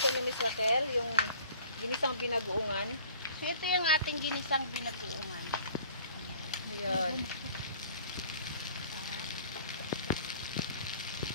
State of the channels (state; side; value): inverted; both; correlation -0.50